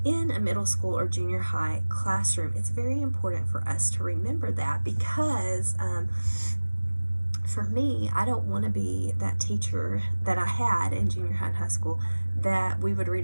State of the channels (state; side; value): inverted; both; correlation -1.00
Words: in a middle school or junior high classroom, it's very important for us to remember that, because for me, I don't want to be that teacher that I had in junior high and high school, that we would read